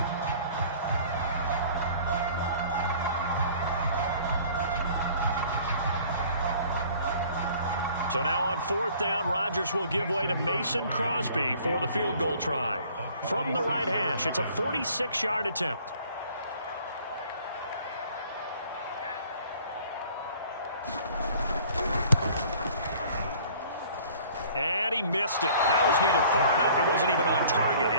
So now on 4th down, Rodgers will give way to Mason Crosby for the field goal try. From the right hash, it's a 46-yard attempt. And he missed it. That was neither far enough. It wasn't even on target.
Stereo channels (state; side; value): inverted; both; correlation -0.53